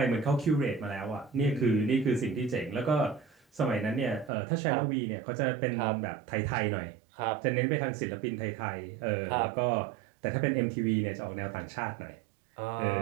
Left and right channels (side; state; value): left; drops out; at 4.3 s